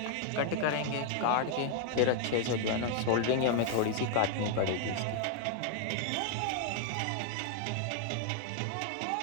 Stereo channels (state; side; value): different; both; correlation 0.00